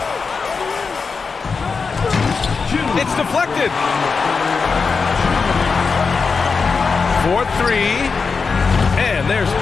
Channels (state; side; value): quieter; right; 4.9 dB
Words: It's deflected. 4-3. And there's